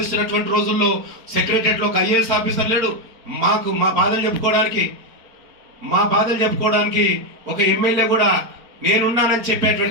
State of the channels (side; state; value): left; late; 4.4 ms